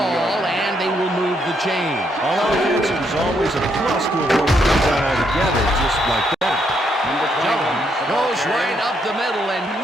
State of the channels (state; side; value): normal; both; correlation 0.75